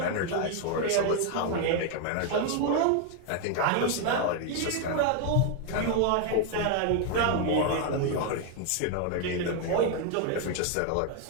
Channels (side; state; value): both; different; correlation 0.01